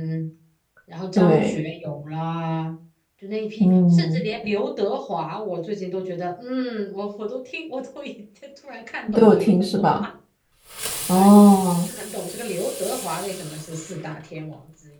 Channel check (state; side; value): identical; both; correlation 1.00